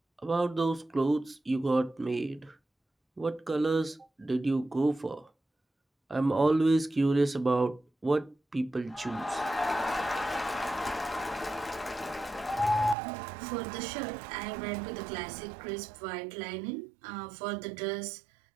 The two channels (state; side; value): drops out; left; at 13.0 s